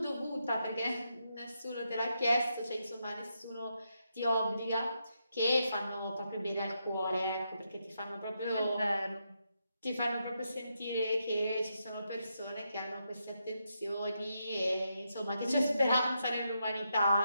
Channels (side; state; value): both; inverted; correlation -0.82